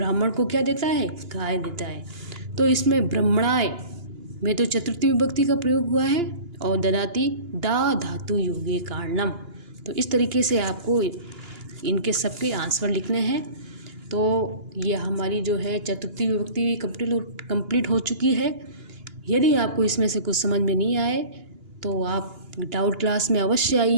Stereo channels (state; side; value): late; left; 2.9 ms